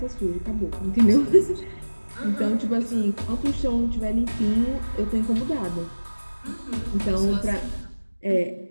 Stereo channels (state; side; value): inverted; both; correlation -1.00